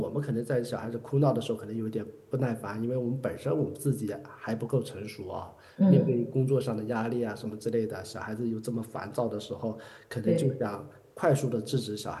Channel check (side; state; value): both; identical; correlation 1.00